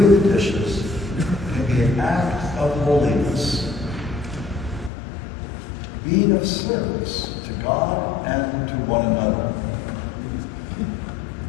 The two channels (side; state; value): right; drops out; at 4.9 s